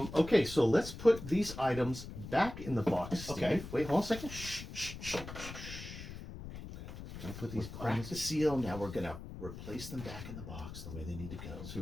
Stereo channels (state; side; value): noise; left; rumble, 11 dB below the sound